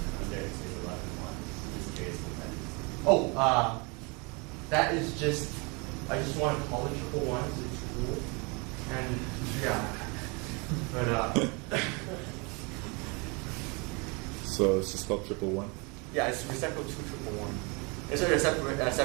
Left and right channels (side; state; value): left; quieter; 30.1 dB